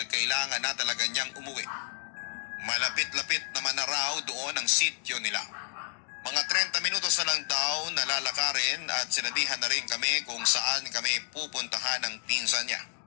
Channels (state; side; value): silent; right; digital silence